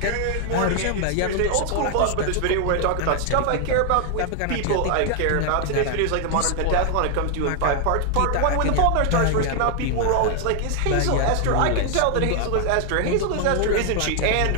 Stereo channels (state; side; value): different; both; correlation 0.00